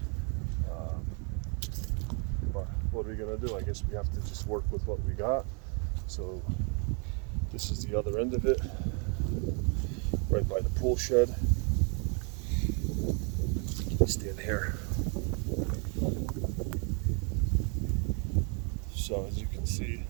But what are we gonna do? I guess we have to just work with what we got. So this is the other end of it, right by the pool shed. Stand here. So as you can see,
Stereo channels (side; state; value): left; quieter; 36.7 dB